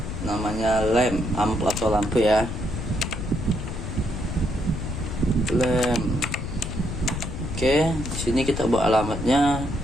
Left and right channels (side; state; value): left; noise; rumble, 5 dB below the sound